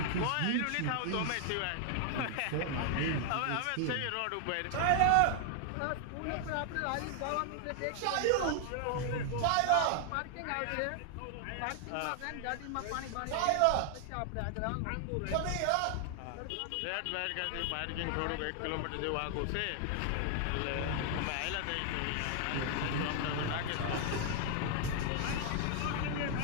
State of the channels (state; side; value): different; both; correlation 0.00